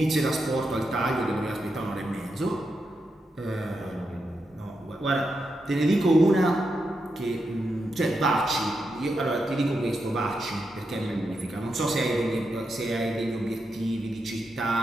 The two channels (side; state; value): both; normal; correlation 0.85